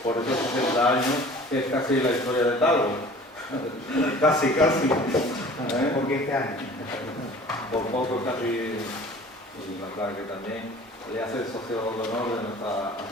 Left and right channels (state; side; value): normal; both; correlation 0.46